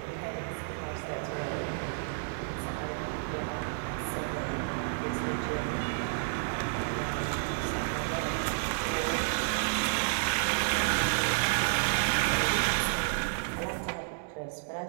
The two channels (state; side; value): silent; left; 57 dB below the other